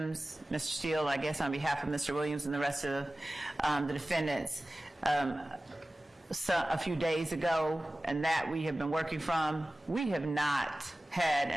Mr. Steele, I guess on behalf of Mr. Williams and the rest of the defendants a few days ago, and that we have been working from. We have not had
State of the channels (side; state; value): both; normal; correlation 0.97